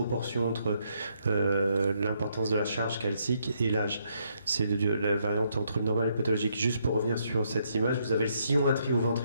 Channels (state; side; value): inverted; both; correlation -0.75